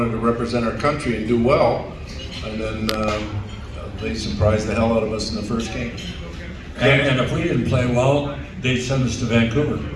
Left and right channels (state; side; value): identical; both; correlation 1.00